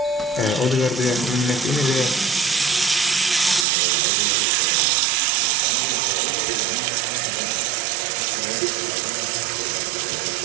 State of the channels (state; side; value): drops out; left; at 3.7 s